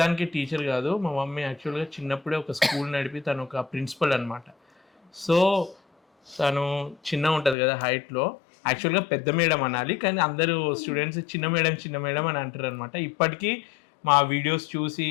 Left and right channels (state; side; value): drops out; right; at 7.6 s